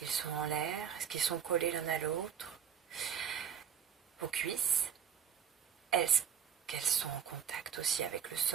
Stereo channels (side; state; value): left; quieter; 8.2 dB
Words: sont en l'air? Est-ce qu'ils sont collés l'un à l'autre? Vos cuisses, est-ce qu'elles sont en contact aussi avec le